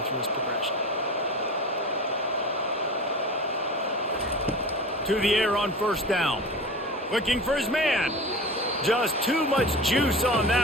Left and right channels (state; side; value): normal; both; correlation 0.33